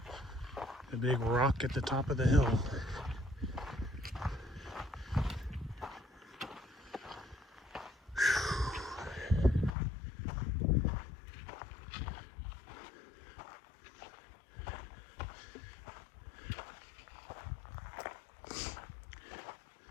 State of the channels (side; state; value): right; drops out; at 9.7 s